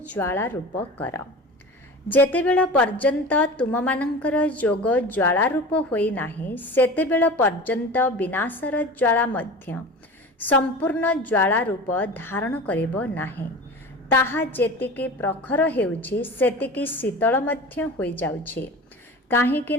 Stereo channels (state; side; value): normal; both; correlation 0.34